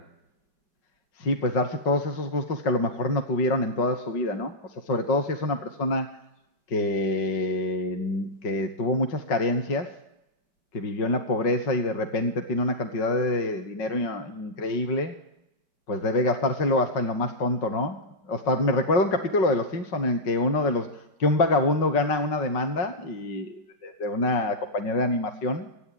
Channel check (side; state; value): right; late; 5.4 ms